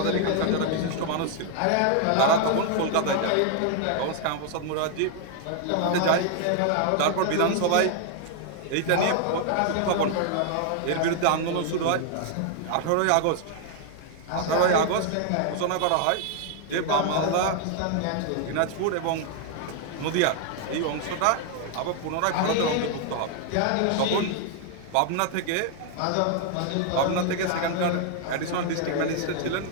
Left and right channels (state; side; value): different; both; correlation 0.00